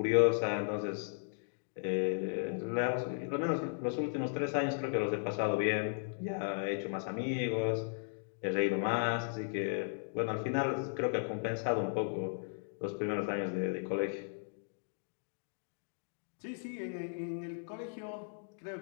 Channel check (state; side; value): silent; right; digital silence